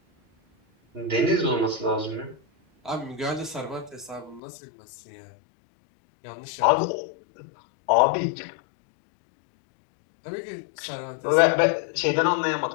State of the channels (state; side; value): drops out; right; at 4.4 s